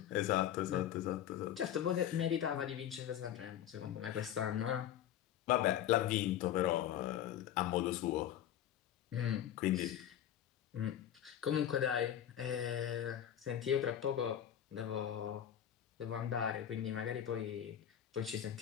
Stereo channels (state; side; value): quieter; right; 10.7 dB